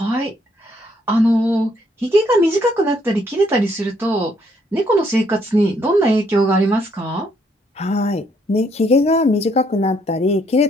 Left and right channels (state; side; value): normal; both; correlation 0.69